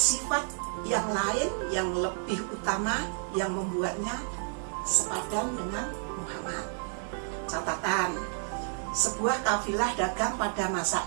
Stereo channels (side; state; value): left; silent; 58 dB below the other